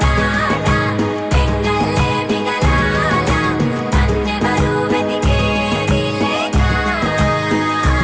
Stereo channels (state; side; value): identical; both; correlation 1.00